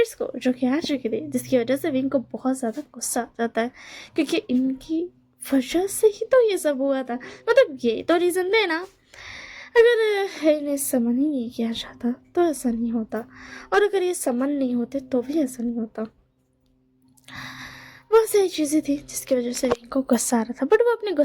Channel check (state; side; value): identical; both; correlation 1.00